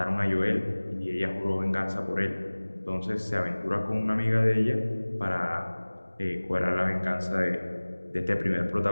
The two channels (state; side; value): inverted; both; correlation -1.00